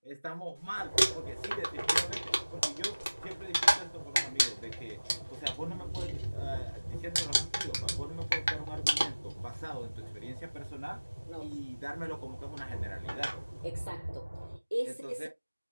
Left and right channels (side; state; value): both; inverted; correlation -1.00